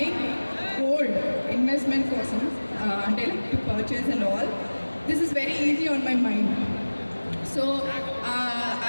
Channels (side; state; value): both; inverted; correlation -1.00